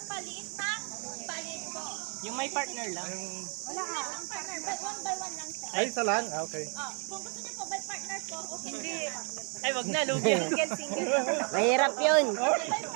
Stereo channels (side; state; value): left; quieter; 38.9 dB